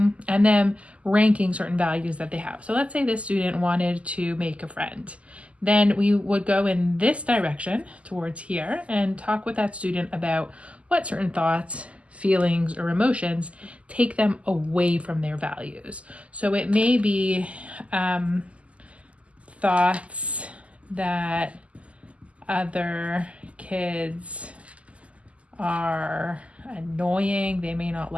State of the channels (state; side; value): late; left; 0.062 ms